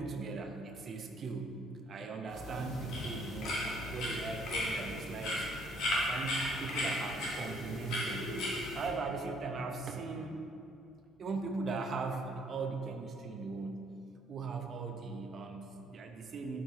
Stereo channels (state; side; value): normal; both; correlation 0.64